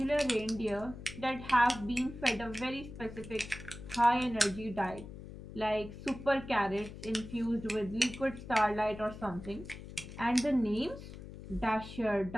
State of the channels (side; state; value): left; noise; hum, 13 dB below the sound